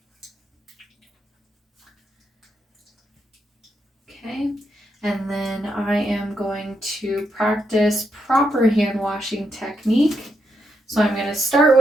Okay, and then I am going to practice proper hand washing technique. So I'm going to start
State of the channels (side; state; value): both; normal; correlation 0.81